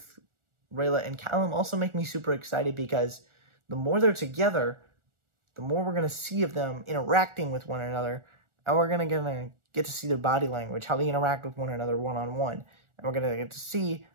Rayla and Callum also make me super excited, because the more they're together, the more we're going to see of them interacting with one another, and we're going to get to see their body language, how they interact with one another one-on-one, and we're going to get to see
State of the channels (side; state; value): left; late; 1.4 ms